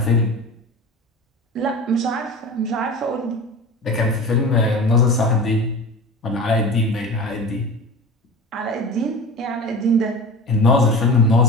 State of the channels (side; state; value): both; normal; correlation 0.32